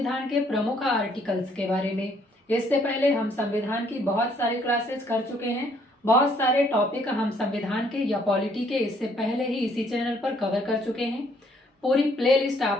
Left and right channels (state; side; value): normal; both; correlation 0.65